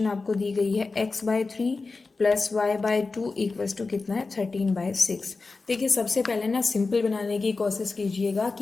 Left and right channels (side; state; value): right; quieter; 3.9 dB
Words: आपको दी गई है x/3 plus y/2 equals to कितना है 13/6। देखिए सबसे पहले ना सिंपल बनाने की कोशिश कीजिएगा